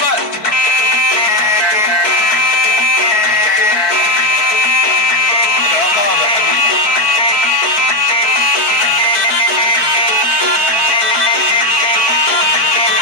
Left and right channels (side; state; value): right; late; 4.6 ms